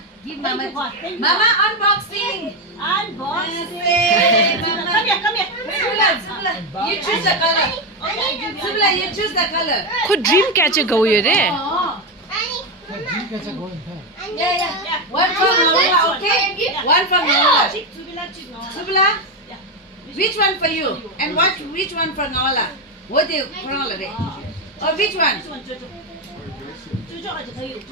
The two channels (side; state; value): both; normal; correlation 0.10